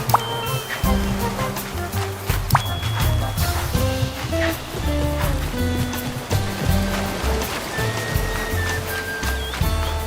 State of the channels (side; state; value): both; identical; correlation 1.00